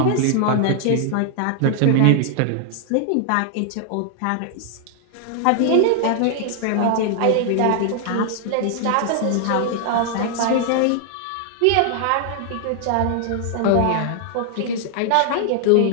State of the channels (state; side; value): different; both; correlation 0.00